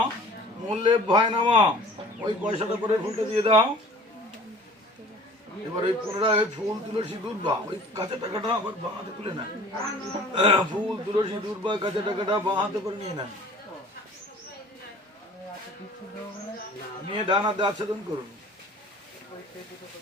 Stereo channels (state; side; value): normal; both; correlation 0.47